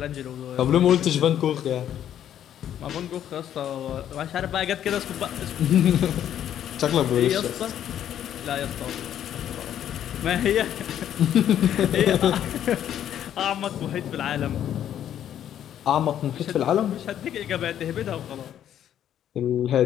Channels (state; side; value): quieter; right; 10.5 dB